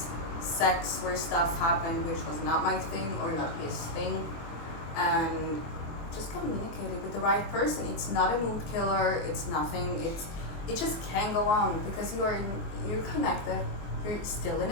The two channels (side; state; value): right; late; 24 ms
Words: sex where stuff happened which was not my thing or not his thing, and just communicate it with the right person. It's not a mood killer. It's nothing. It just can go on because you're connected. You're still in